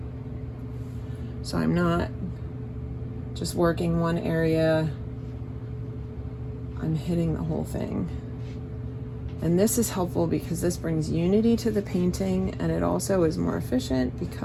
So I'm not just working one area, I'm hitting the whole thing. And this is helpful because this brings unity to the painting, and it also is more efficient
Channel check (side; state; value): both; identical; correlation 1.00